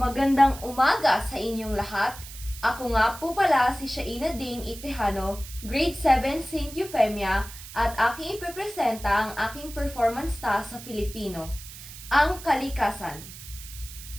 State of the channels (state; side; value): noise; right; hiss, 14 dB below the sound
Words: umaga sa inyong lahat. Ako nga po pala si Shaina Dane Itejano, Grade 7 St. Euphemia, at aking ipipresenta ang aking performance task sa Filipino, ang kalikasan.